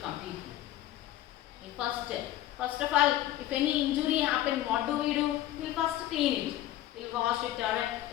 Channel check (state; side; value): quieter; right; 13.8 dB